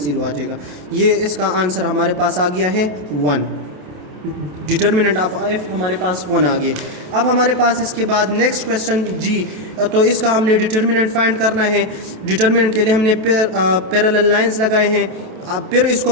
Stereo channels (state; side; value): late; left; 28 ms